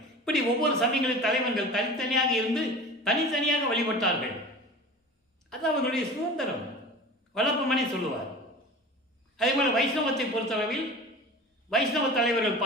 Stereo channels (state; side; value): normal; both; correlation 0.37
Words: இப்படி ஒவ்வொரு சமயங்களின் தலைவர்கள் தனித்தனியாக இருந்து தனித்தனியாக வழிபட்டார்கள். அது அவர்களுடைய சுதந்திரம். வளப்பமனே சொல்லுவார். அதேபோல் வைஷ்ணவத்தை பொறுத்தளவில் வைஷ்ணவ தலைவர்கள்